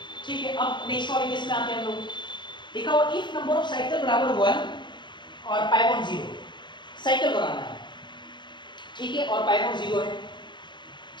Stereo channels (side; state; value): right; late; 0.22 ms